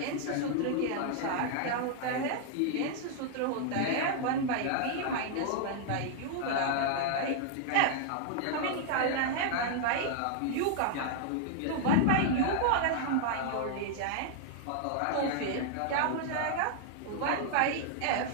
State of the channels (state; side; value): different; both; correlation 0.00